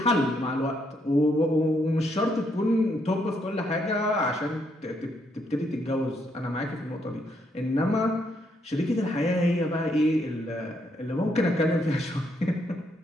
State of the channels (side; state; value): both; normal; correlation 0.75